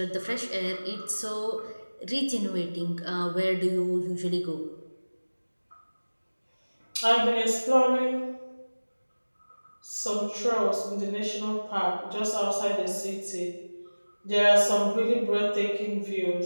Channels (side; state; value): both; inverted; correlation -1.00